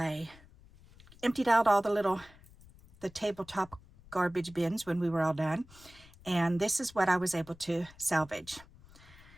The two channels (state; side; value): noise; left; rumble, 24 dB below the sound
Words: emptied out all the tabletop garbage bins when we were all done, and this is what I was able to salvage.